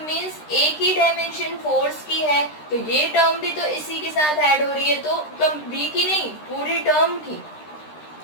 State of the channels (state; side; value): late; right; 13 ms